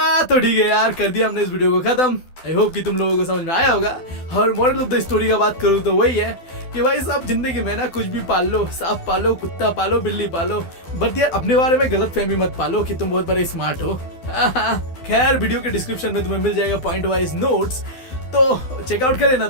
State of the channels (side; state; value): right; late; 12 ms